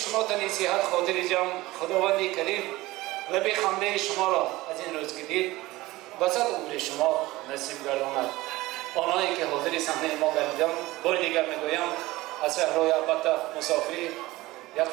تنی صحت خاطر جمع خداوندی کریم لبی خنده شما را از این روز که دید بسط عمر شما نصیب گرداند. آنهایی که حاضر صحنه ما گردیدم بار دیگر میگویم از صحرای البته مسافری یک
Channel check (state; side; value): quieter; left; 19.1 dB